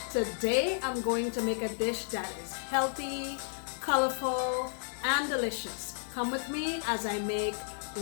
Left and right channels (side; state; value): right; silent; 56 dB below the other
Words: Today I'm going to make a dish that is healthy, colorful, and delicious. Come with me as I make